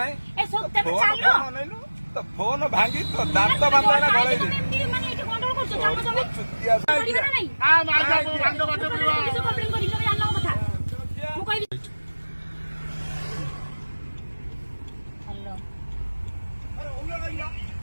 तो फोन भांगी तो दांत बांधा गले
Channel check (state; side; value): inverted; both; correlation -1.00